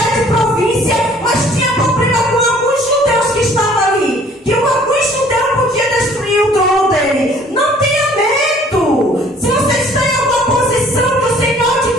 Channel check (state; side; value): normal; both; correlation 0.56